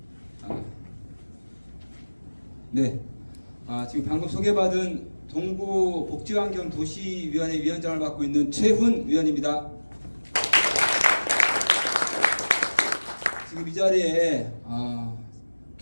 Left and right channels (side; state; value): both; inverted; correlation -1.00